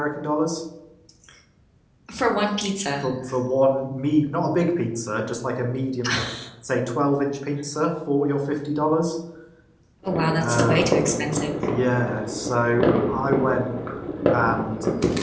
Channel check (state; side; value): identical; both; correlation 1.00